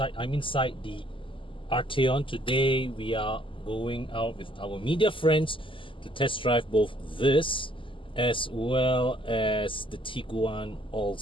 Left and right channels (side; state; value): right; late; 0.25 ms